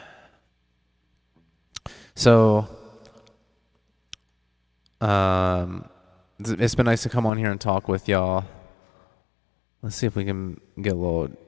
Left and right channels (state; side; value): drops out; right; at 7.3 s